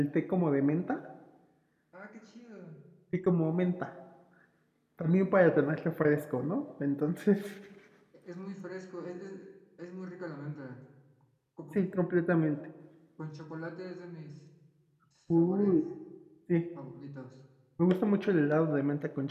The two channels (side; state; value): both; identical; correlation 1.00